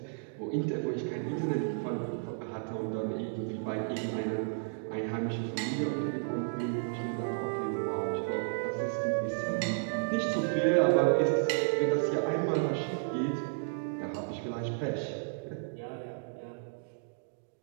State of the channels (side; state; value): left; silent; digital silence